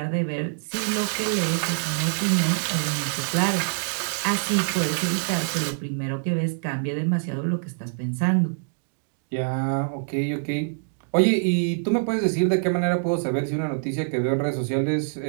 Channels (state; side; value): silent; left; digital silence